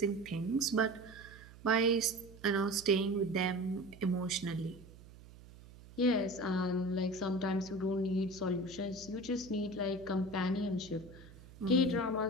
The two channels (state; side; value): noise; right; hum, 20 dB below the sound